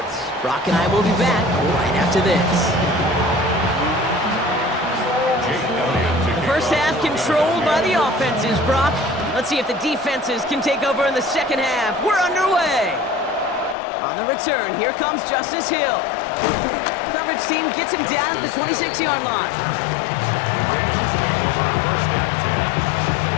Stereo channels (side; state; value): right; drops out; at 13.8 s